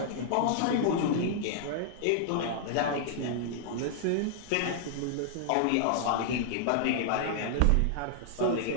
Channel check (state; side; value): different; both; correlation -0.01